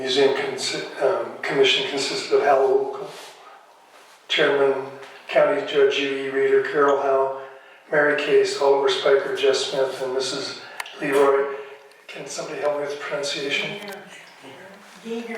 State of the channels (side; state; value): both; identical; correlation 1.00